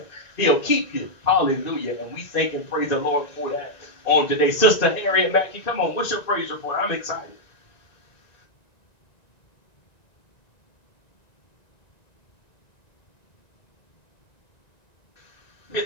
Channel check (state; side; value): late; right; 1.9 ms